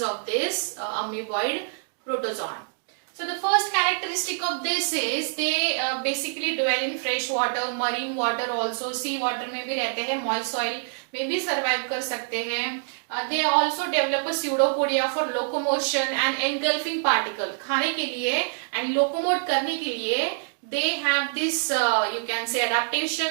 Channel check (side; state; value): left; silent; digital silence